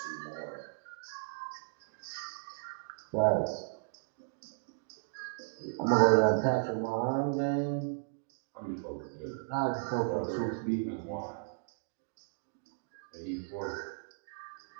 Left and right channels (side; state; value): left; silent; digital silence